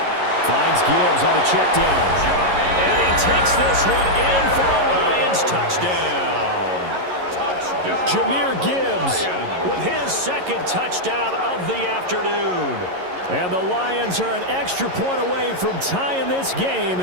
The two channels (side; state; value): left; late; 11 ms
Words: Finds Gibbs on the check down. And he takes this one in for a Lions touchdown. Jahmyr Gibbs With his second touchdown of the afternoon. And the Lions are an extra point away from tying this game